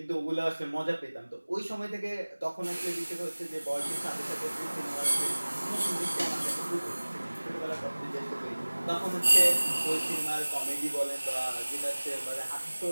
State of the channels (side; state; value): both; inverted; correlation -1.00